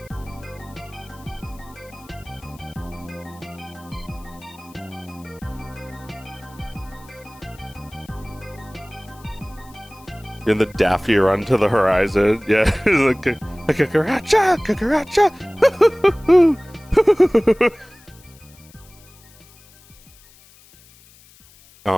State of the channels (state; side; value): noise; left; hiss, 26 dB below the sound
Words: In the Daffy run to the horizon. Yeah, like a cucaracha, cucaracha.